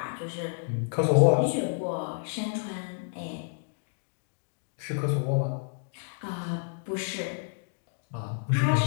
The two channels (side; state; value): right; silent; digital silence